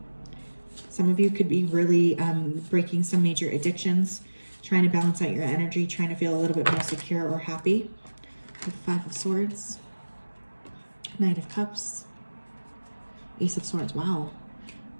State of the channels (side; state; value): both; inverted; correlation -1.00